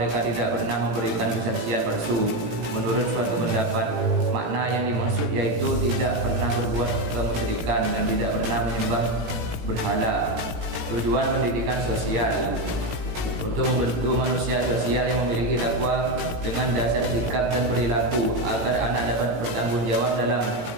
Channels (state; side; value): late; left; 18 ms